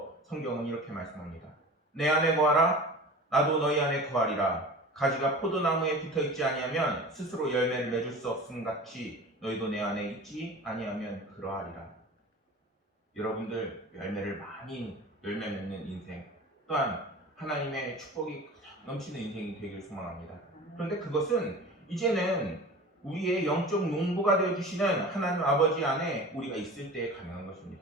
성경은 이렇게 말씀합니다. 내 안에 거하라 나도 너희 안에 거하리라. 가지가 포도나무에 붙어있지 아니하면 스스로 열매를 맺을 수 없음 같이 너희도 내 안에 있지 아니하면 그러하리라. 여러분들 열매 맺는 인생 또한 하나님의 축복이 넘치는 인생이 되길 소망합니다. 그런데 그것은 이제는 우리의 영적 농부가 되어주시는 하나님 아버지 안에 우리가 있을 때 가능한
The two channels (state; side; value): normal; both; correlation 0.37